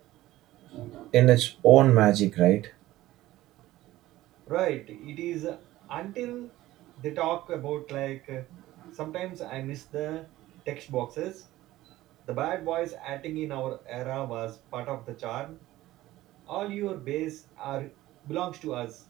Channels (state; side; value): quieter; left; 16.1 dB